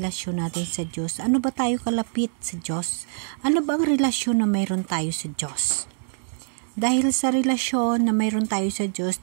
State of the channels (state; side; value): silent; left; digital silence